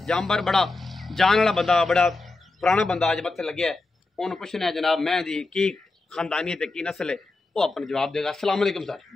जानवर बड़ा जान वाला बंदा, बड़ा पुराना बंदा अज मत्थे लगे है। उन्होंने पूछना है जनाब मैं दी की खानदानियत की नस्ल है, वो अपना जवाब देगा। अस्सलाम वालेकुम सर।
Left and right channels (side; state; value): right; quieter; 3.3 dB